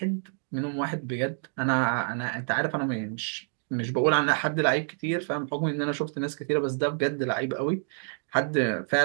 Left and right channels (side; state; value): left; silent; digital silence